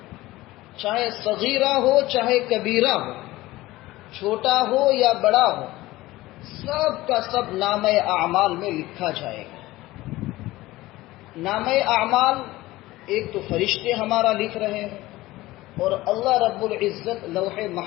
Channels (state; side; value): quieter; right; 18.1 dB